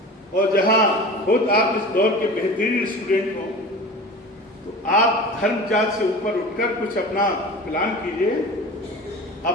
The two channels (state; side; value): normal; both; correlation 0.35